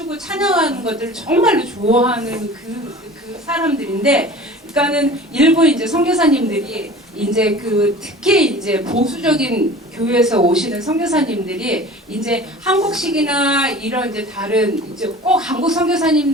찬양하는 것들을 정말로 좋아하는 그 사람들인데, 그러니까는 일부 이제 선교사님들이 이제 특히 이제 보수적인 교회에서 오시는 선교사님들이 이제 한국식이나 이런 이제 다른 이제 꼭 한국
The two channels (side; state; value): both; normal; correlation 0.41